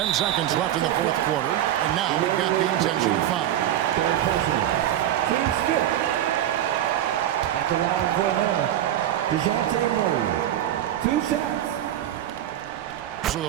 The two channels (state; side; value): quieter; left; 11.9 dB